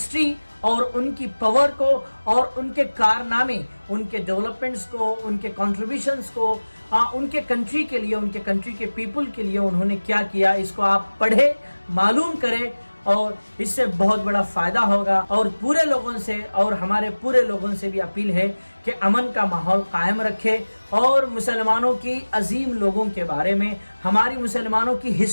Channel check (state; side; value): inverted; both; correlation -1.00